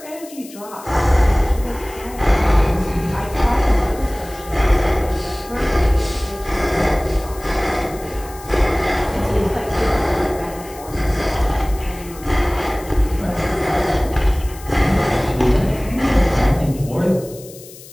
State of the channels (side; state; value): left; noise; hiss, 19 dB below the sound